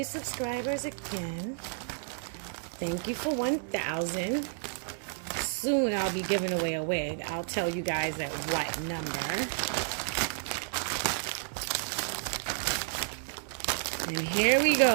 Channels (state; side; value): silent; left; 57 dB below the other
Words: subscribers again. Thank you for 1,000. Soon I'll be giving away a wig. I'll tell you guys at what number. And here we